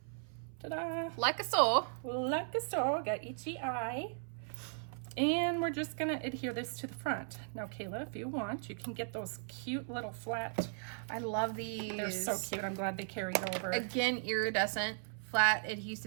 Ta-da! Like so. Like so, got itchy eye. And we're just gonna adhere this to the front. Now, Kayla, if you want, you can get those cute little flat. I love these. They're so cute. I'm glad they carried over. Again, iridescent, flat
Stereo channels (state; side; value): silent; left; 53 dB below the other